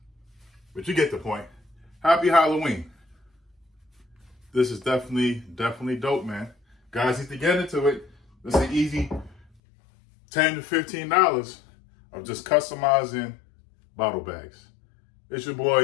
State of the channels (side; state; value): right; drops out; at 9.5 s